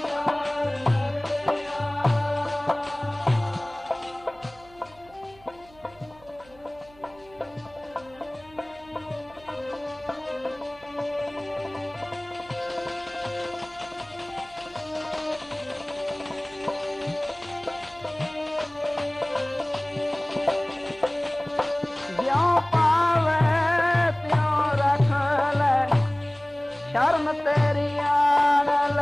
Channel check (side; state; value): right; noise; hum, 26 dB below the sound